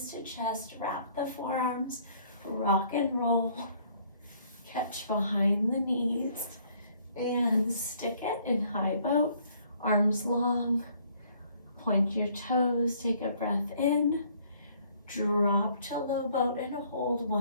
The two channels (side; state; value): both; inverted; correlation -0.62